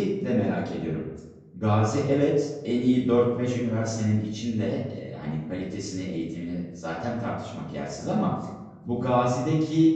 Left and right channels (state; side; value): identical; both; correlation 1.00